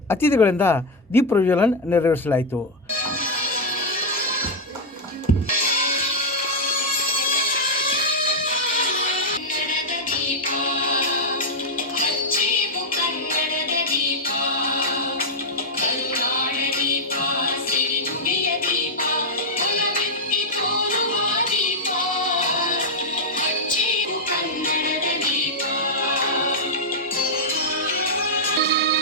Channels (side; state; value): both; normal; correlation -0.02